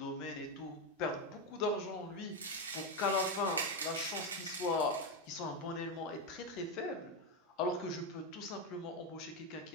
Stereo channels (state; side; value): normal; both; correlation 0.08